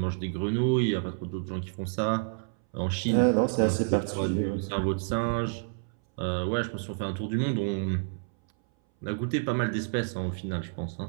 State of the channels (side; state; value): left; silent; 59 dB below the other